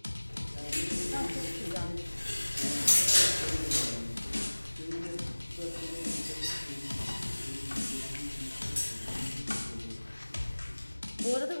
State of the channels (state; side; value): inverted; both; correlation -1.00